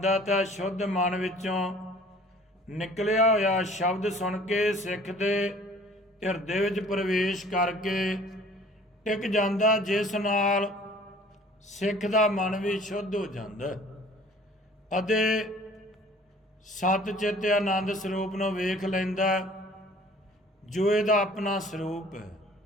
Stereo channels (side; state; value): both; normal; correlation 0.51